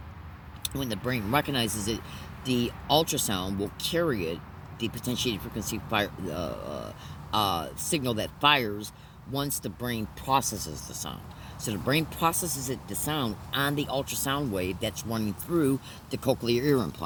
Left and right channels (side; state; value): both; identical; correlation 1.00